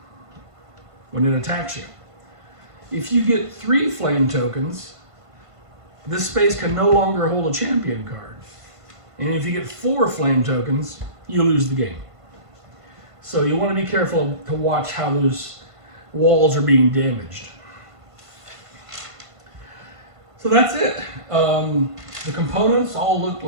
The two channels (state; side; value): late; left; 1.5 ms